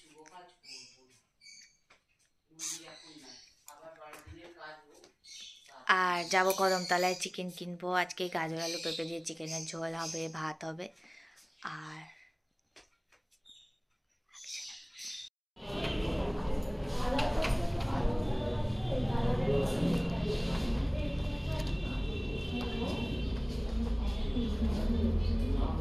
আর যাবো কদমতলায়, চিকেন কিনবো আজকে। গাজর আলু পেঁপে দিয়ে চিকেনের ঝোল হবে, ভাত হবে। আর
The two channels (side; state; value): both; identical; correlation 1.00